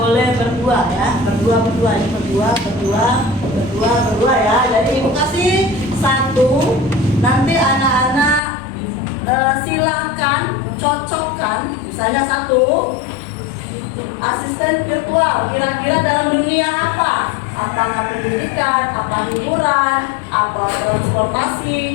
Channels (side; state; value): right; drops out; at 8.4 s